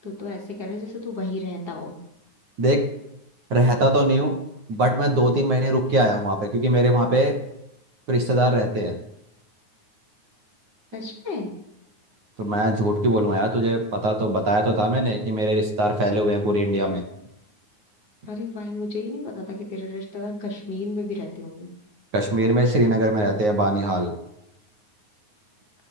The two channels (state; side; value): late; left; 9.5 ms